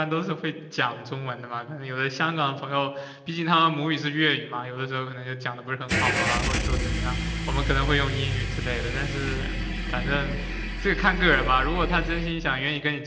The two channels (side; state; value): both; identical; correlation 1.00